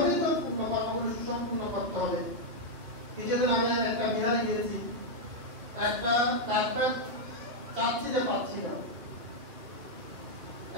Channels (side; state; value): left; late; 2.9 ms